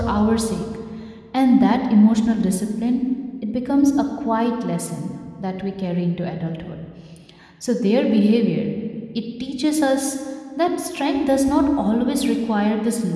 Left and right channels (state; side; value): identical; both; correlation 1.00